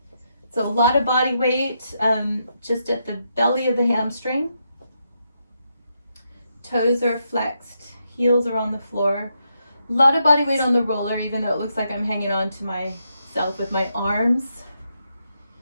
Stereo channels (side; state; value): both; inverted; correlation -0.81